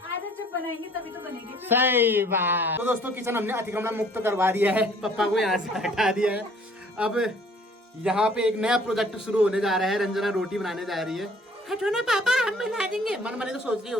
आदत जब बनाएंगे तभी तो बनेगी। सही बात। तो दोस्तों किचन हमने अतिक्रमण मुक्त करवा दिया है, पापा को यहाँ से हटा दिया है। अब यहाँ पे एक नया प्रोजेक्ट शुरू होने जा रहा है। रंजना रोटी बनाने जा रही है। हटो ना पापा, हम मिला देंगे। मन मने तो सोच रही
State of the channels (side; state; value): both; normal; correlation 0.56